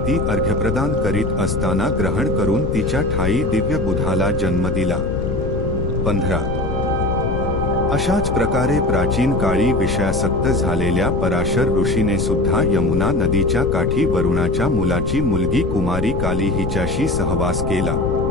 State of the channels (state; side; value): noise; left; rumble, 4 dB below the sound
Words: ती अर्घ्यप्रदान करीत असताना ग्रहण करून तिच्या ठाई दिव्य बुधाला जन्म दिला. 15 अशाच प्रकारे प्राचीन काळी विषयासक्त झालेल्या पराशर ऋषीने सुद्धा यमुना नदीच्या काठी वरुणाच्या मुलाची मुलगी कुमारी काली हिच्याशी सहवास केला.